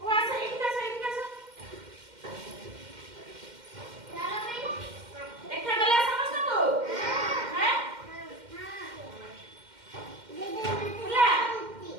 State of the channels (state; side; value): late; left; 2.1 ms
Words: ও আসো ইটকাছো দেখা গেল সমস্তকু হ্যাঁ বুলা